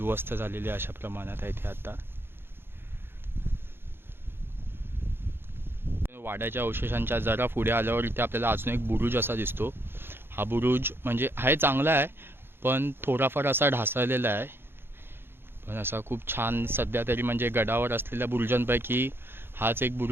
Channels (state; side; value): late; left; 0.11 ms